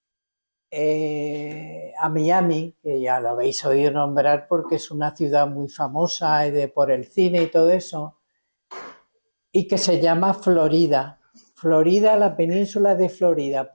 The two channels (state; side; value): inverted; both; correlation -1.00